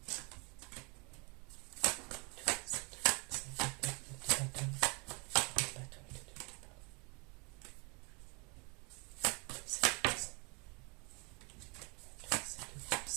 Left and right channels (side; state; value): left; quieter; 31.0 dB